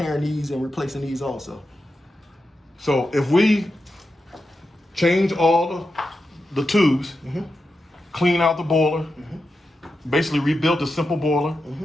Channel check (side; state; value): both; normal; correlation 0.89